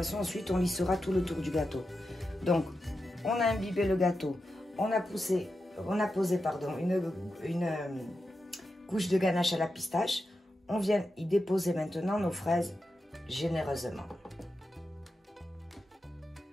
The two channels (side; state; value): both; normal; correlation 0.89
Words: ensuite, on lissera tout le tour du gâteau. Donc, on a imbibé le gâteau, on a posé une couche de ganache à la pistache. On vient y déposer maintenant nos fraises généreusement.